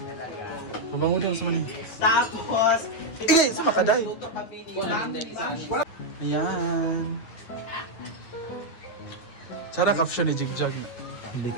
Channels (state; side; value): late; right; 9.4 ms